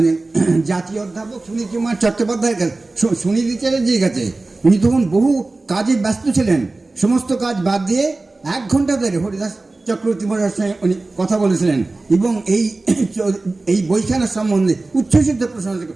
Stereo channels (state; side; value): quieter; left; 3.3 dB